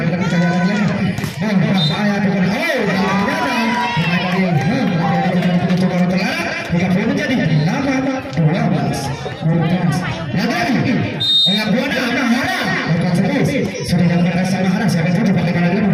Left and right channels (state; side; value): identical; both; correlation 1.00